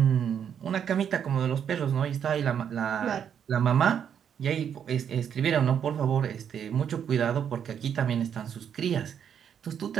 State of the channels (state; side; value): quieter; left; 8.4 dB